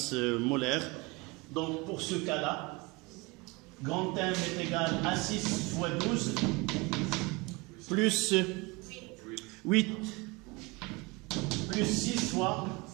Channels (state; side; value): quieter; left; 25.3 dB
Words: molaire. Donc pour ce cas-là, grand M est égal à 6 fois 12 plus 8 plus 6 fois